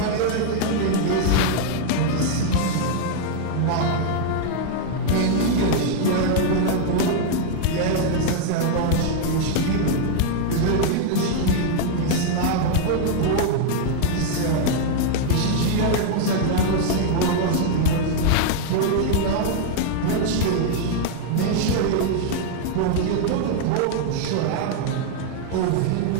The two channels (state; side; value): different; both; correlation 0.00